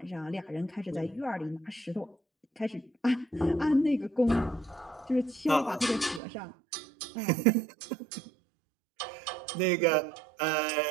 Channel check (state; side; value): drops out; left; at 6.2 s